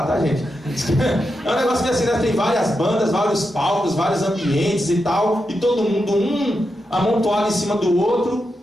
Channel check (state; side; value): normal; both; correlation 0.87